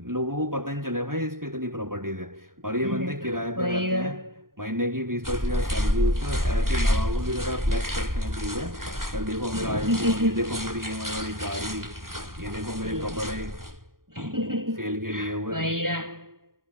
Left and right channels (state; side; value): late; left; 0.91 ms